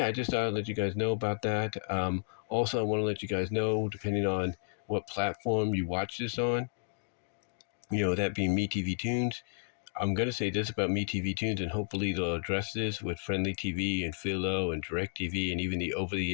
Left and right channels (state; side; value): silent; right; digital silence